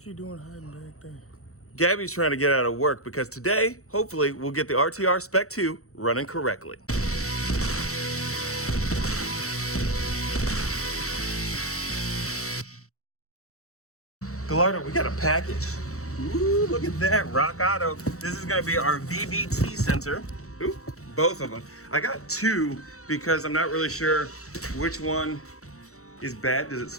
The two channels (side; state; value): right; late; 0.64 ms